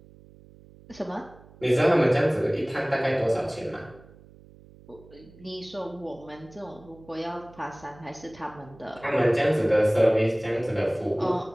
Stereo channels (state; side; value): noise; right; hum, 23 dB below the sound